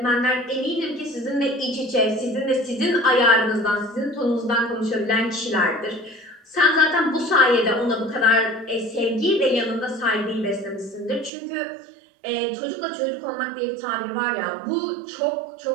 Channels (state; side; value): drops out; left; at 11.3 s